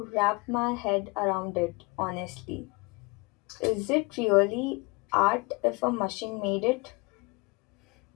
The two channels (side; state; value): right; quieter; 27.2 dB